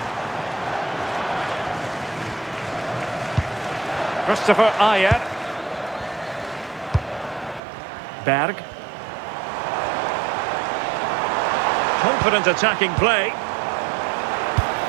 Christopher Ayer. Berg. Confident attacking play.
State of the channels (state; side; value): drops out; left; at 7.6 s